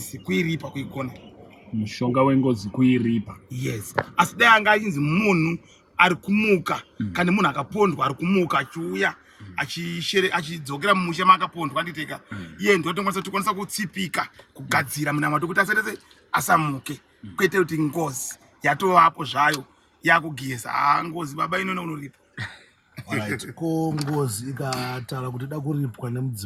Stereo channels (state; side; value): identical; both; correlation 1.00